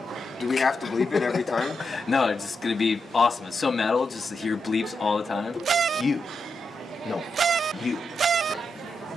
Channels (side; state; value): both; normal; correlation 0.85